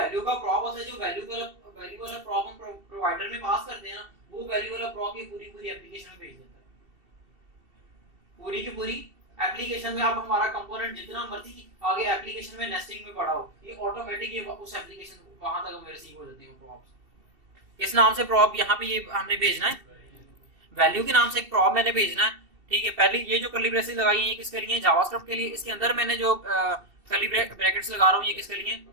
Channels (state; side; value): late; left; 2.7 ms